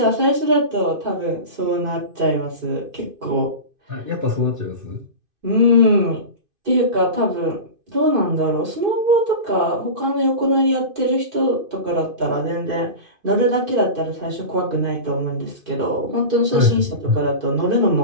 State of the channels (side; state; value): left; late; 2.5 ms